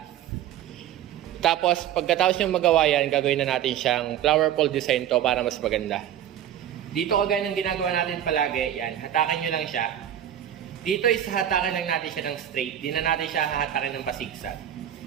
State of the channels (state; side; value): quieter; left; 10.7 dB